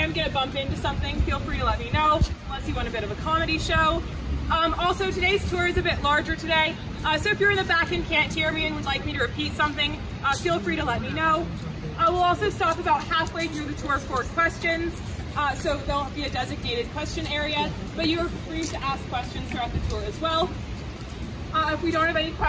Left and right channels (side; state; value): both; identical; correlation 1.00